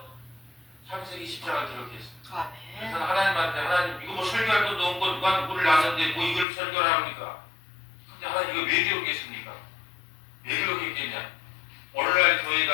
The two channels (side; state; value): right; drops out; at 6.5 s